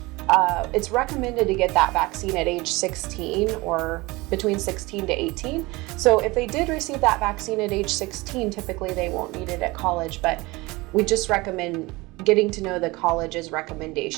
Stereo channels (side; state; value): left; quieter; 22.5 dB